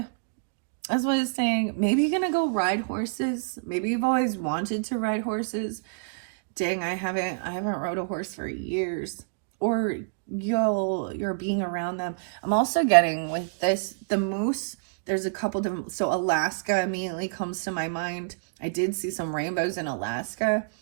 That's what I was saying. Maybe you're gonna go ride horses. Maybe you've always wanted to ride horses. Dang, I haven't rode a horse for years. Or you're being around them. I'm also getting with this, the moose, there's a couple different, so Alaska immediately comes to my mind. I did see some rainbows in Alaska.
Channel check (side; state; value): left; quieter; 39.7 dB